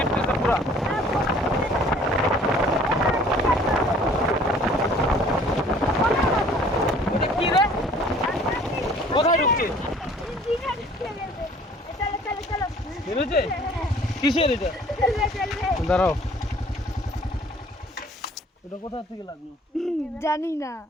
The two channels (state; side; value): normal; both; correlation 0.53